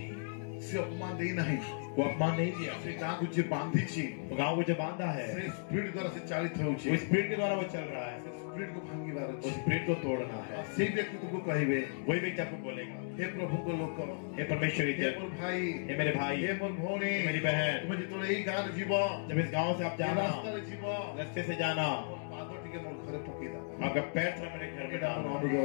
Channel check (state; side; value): silent; right; digital silence